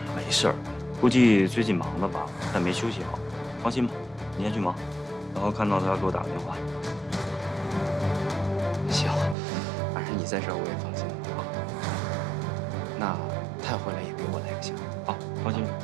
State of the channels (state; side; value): drops out; left; at 9.3 s